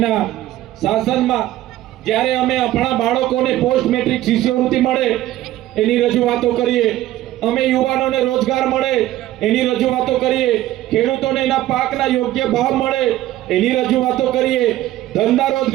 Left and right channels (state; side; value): quieter; left; 14.5 dB